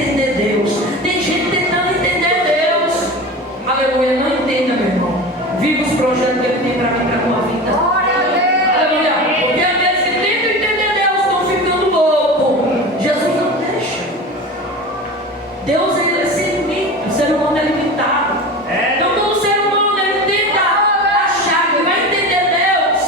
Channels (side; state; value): both; normal; correlation 0.31